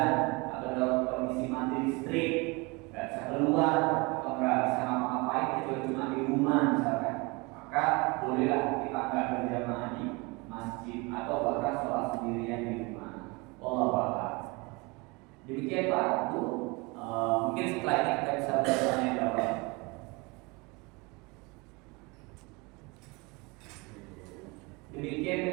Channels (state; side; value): quieter; left; 26.8 dB